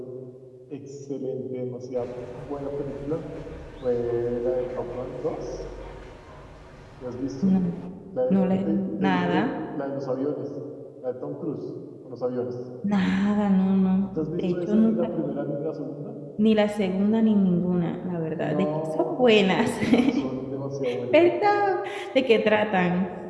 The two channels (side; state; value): both; identical; correlation 1.00